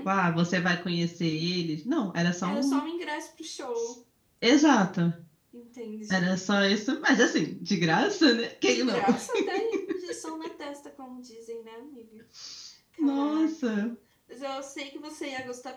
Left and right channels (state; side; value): identical; both; correlation 1.00